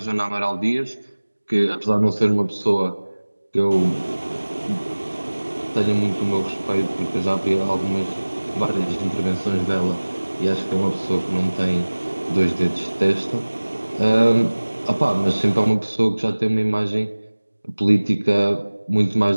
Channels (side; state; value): both; inverted; correlation -1.00